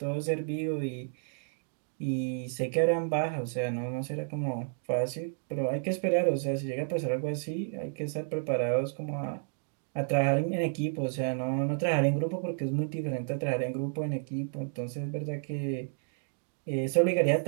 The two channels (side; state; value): left; silent; digital silence